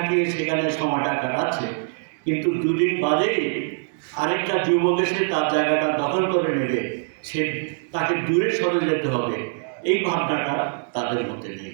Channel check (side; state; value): left; silent; digital silence